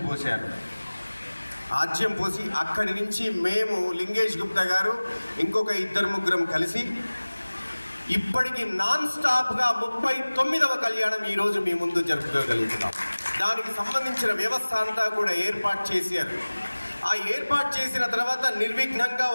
పోశారు. ఆజ్యం పోసి అక్కడి నుంచి మేము లింగేష్ గుప్తా గారు ఇంకొక 2-3 కలిసి ఇప్పటికి నాన్ స్టాప్గా 39వ కళ్యాణం ఈరోజు మీ ముందు జరుపుకోగలుగుతున్నాం. దానికి సంబంధించిన వ్యవస్థ అంతా కూడా ఏర్పాటు చేశారు. ఆ ఏర్పాటు చేసిన తర్వాత నిర్విఘ్నంగా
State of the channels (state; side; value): inverted; both; correlation -1.00